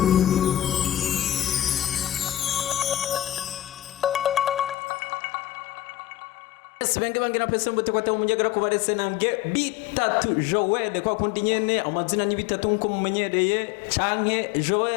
Benge bangira pese mbote kwa tamu mujagara kubarese nange bitatu Joel kwa kundi nyene amazina ni bitatu nko mumenyereye canke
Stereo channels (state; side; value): drops out; right; at 4.8 s